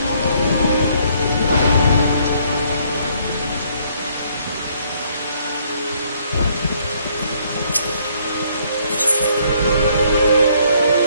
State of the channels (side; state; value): both; inverted; correlation -0.66